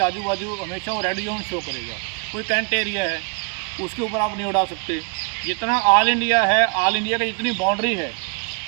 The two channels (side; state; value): left; quieter; 34.6 dB